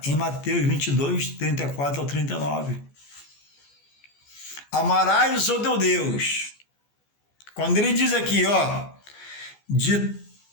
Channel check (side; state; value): right; late; 14 ms